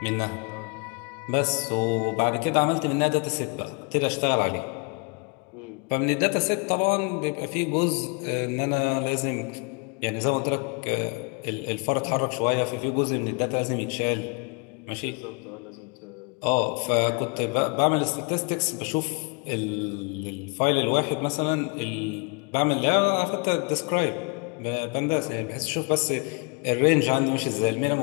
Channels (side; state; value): right; quieter; 33.1 dB